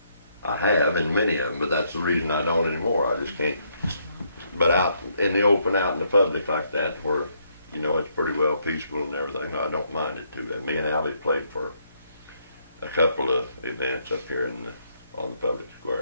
I have in many of them, but that's the reason I don't anymore. I just can't. But out in the open, out in the public like that, where you know it's pretty well peaceful and everything, I don't mind it too bad. Me and Alvie played for a couple of events up here on the public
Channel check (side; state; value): both; inverted; correlation -0.73